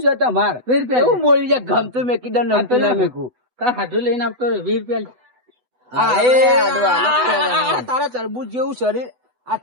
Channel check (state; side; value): late; left; 8.0 ms